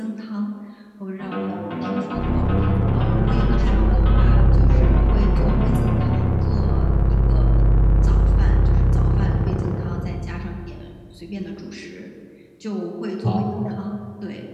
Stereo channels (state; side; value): identical; both; correlation 1.00